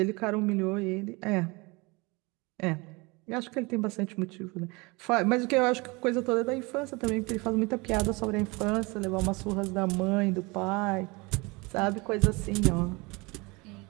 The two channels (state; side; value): quieter; left; 26.2 dB